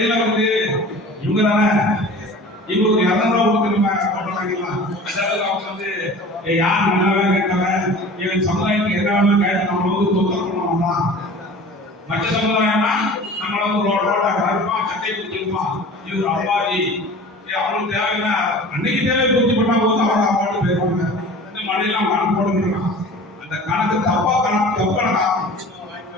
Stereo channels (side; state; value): both; normal; correlation 0.40